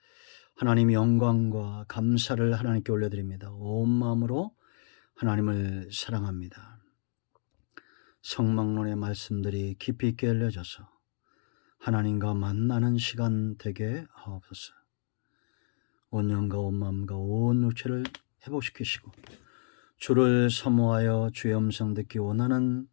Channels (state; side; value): silent; right; digital silence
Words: 하나님 영광과 감사를 하나님께 올려드립니다. 온 마음으로 하나님을 사랑합니다. 성막론의 말씀들이 깊이 있게 알려져서 하나님과 만나는 시간 되게 하옵소서. 온 영과 온 마음과 온 육체를 회복시키시고 주를 사모하여 주의 음성 듣기 원하는